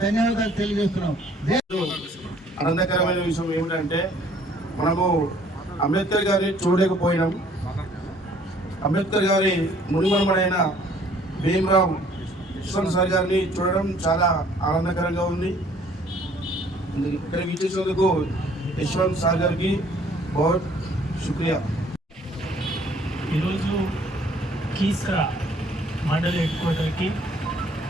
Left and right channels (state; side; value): normal; both; correlation 0.58